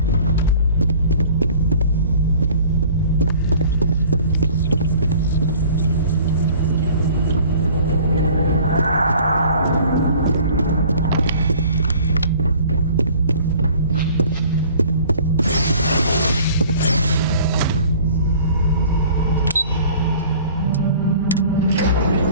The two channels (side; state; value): both; inverted; correlation -0.49